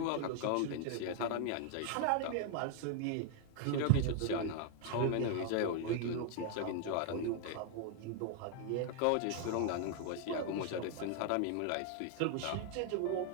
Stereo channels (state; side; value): different; both; correlation 0.00